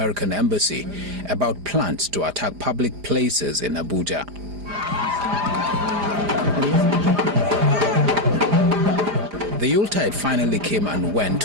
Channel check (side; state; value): left; late; 4.9 ms